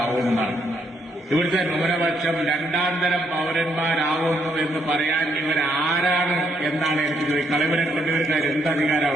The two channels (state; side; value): normal; both; correlation 0.73